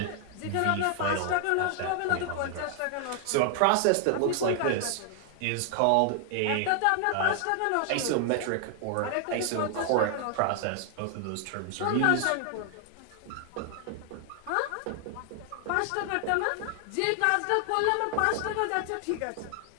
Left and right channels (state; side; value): different; both; correlation 0.00